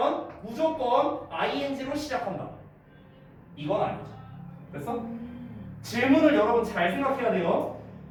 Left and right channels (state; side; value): identical; both; correlation 1.00